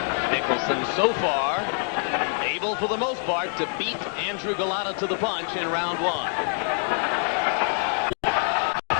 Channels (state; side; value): silent; right; 62 dB below the other